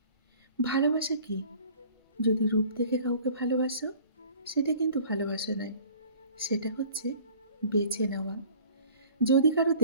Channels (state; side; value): inverted; both; correlation -0.50